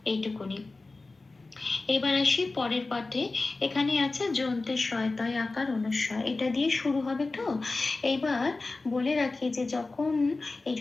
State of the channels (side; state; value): right; quieter; 3.5 dB